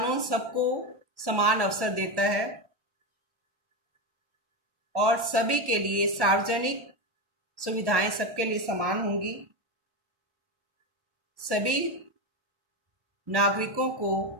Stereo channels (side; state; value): left; late; 1.1 ms